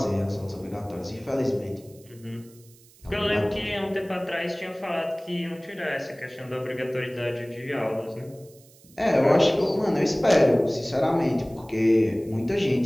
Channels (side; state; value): right; noise; hiss, 26 dB below the sound